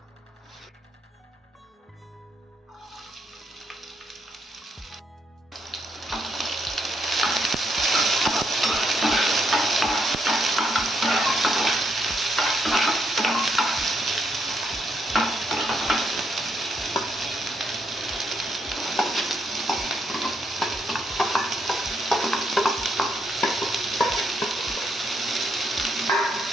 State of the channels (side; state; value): both; normal; correlation 0.76